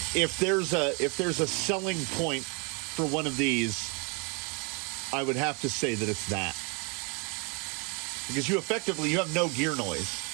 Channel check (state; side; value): quieter; left; 32.9 dB